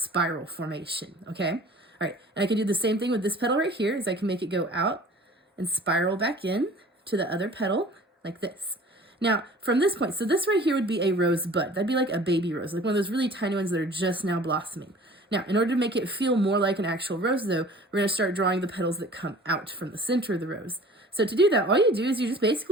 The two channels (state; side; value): normal; both; correlation 0.46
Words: formation, okay? All right, and I can do the same thing with this petal right here, is I can make it go out and spiral back in to the other petal like this. Now, from this point, so this right here would be a rosebud. That'd be like a baby rose, like one of those really tiny ones that are just now blossoming. Now, in order to make it feel more like an actual rose, though, we're going to start drawing the petals that come out from the center of the rose. So to do that, all you do is you just